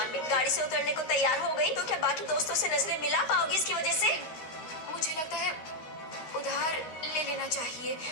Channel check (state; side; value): late; right; 13 ms